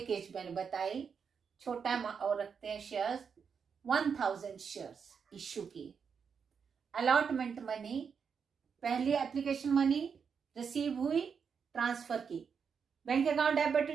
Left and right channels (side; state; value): left; quieter; 6.4 dB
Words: मैंने बताई, छोटा और रखते हैं शेयर्स। 1000 शेयर्स इश्यू की। अलॉटमेंट मनी, पहली एप्लीकेशन मनी रिसीव हुई, ट्रांसफर की। Bank account debit to